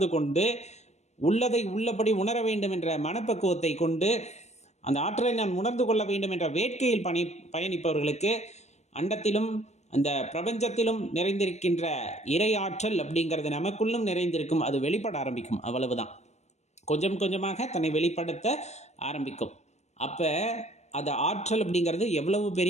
கொண்டு உள்ளதை உள்ளபடி உணர வேண்டும் என்ற மனப்பக்குவத்தை கொண்டு அந்த ஆற்றலை நான் உணர்ந்து கொள்ள வேண்டும் என்ற வேட்கையில் பயணிப்பவர்களுக்கு அண்டத்திலும் அந்த பிரபஞ்சத்திலும் நிறைந்திருக்கின்ற இறை ஆற்றல் அப்படிங்கிறது நமக்குள்ளும் நிறைந்திருக்கும். அது வெளிப்பட ஆரம்பிக்கும். அவ்வளவுதான். கொஞ்சம் கொஞ்சமாக தன்னை வெளிப்படுத்த ஆரம்பிக்கும். அப்போ அது ஆற்றல் அப்படிங்கிறது எவ்வளவு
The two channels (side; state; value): right; late; 0.32 ms